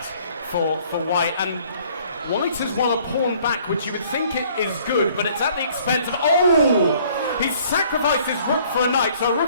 for white, and white has won a pawn back, which you would think it is good, but it's at the expense of... He's sacrificed his rook for a knight, so a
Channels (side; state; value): both; inverted; correlation -0.58